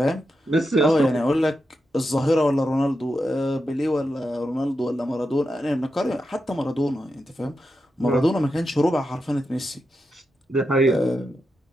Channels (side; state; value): both; normal; correlation 0.87